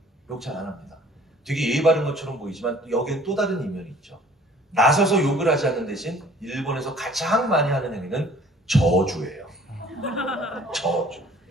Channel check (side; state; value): both; normal; correlation 0.53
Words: 욕 잘 안 합니다. 되게 예의 바른 것처럼 보이지만 여기엔 또 다른 이면이 있죠. 나서서 욕을 하지 않는 대신 일본에서 가장 많이 하는 행위는 저주예요. 저주.